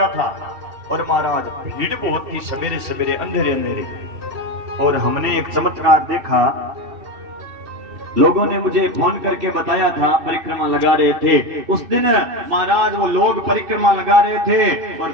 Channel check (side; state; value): left; late; 2.7 ms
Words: था और महाराज भीड़ बहुत थी, सवेरे सवेरे अंधेरे अंधेरे, और हमने एक चमत्कार देखा। लोगों ने मुझे फोन करके बताया था, परिक्रमा लगा रहे थे उस दिन महाराज, वो लोग परिक्रमा लगा रहे थे और